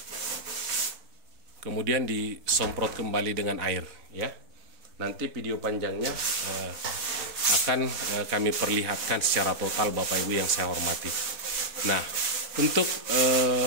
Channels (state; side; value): late; left; 4.0 ms